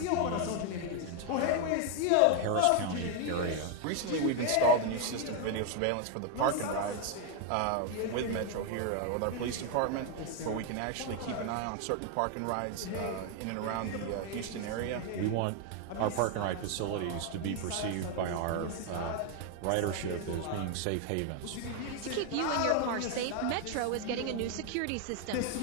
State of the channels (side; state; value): both; different; correlation 0.01